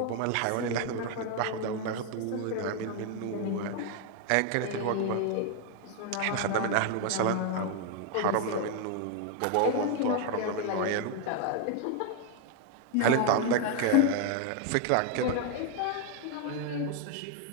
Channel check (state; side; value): different; both; correlation 0.01